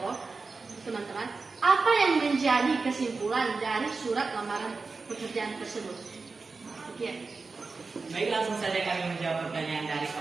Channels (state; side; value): quieter; left; 4.2 dB